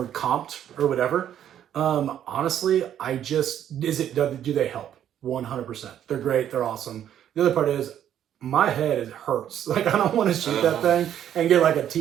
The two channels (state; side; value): quieter; left; 10.4 dB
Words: comped or whatever. Honestly, do they help? 100%. They're great. They're awesome. The other part is my head hurts. Like, I don't want to shoot that thing and get like a